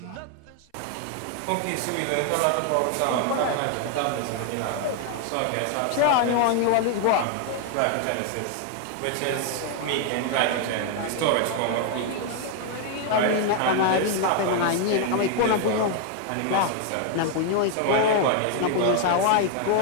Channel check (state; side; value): different; both; correlation 0.00